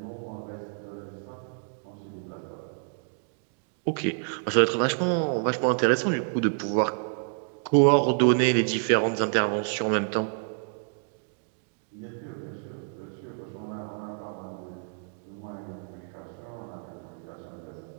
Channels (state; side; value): silent; left; 59 dB below the other